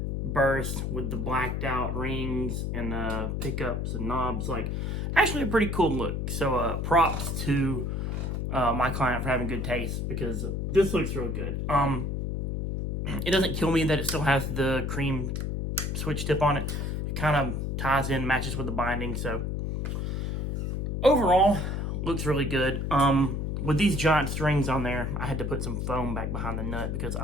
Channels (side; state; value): left; noise; hum, 1 dB below the sound